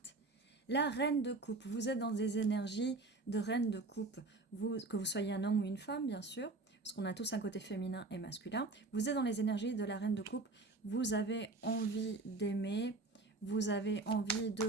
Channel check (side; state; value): left; quieter; 3.4 dB